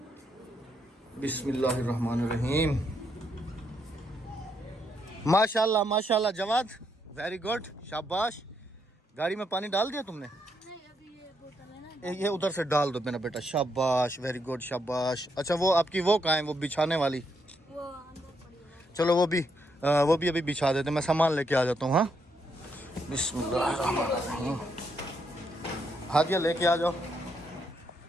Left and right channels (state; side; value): normal; both; correlation 0.77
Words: बिस्मिल्लाहिर्रहमानिर्रहीम माशाल्लाह माशाल्लाह जवाद वेरी गुड, शाबाश। गाड़ी में पानी डाल दिया तुमने? ये उधर से डाल दो मेरा बेटा, शाबाश, वेरी गुड, शाबाश। अच्छा वो आपकी वो कहाँ है, वो बिछाने वाली? चलो वो भी अभी बिछा देते, मैं सामान लेके आ जाता हूँ। हाँ, बिस्मिल्लाह। हादिया लेके आ जाओ।